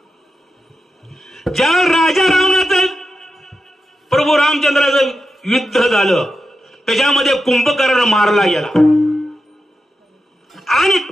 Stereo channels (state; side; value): normal; both; correlation 0.89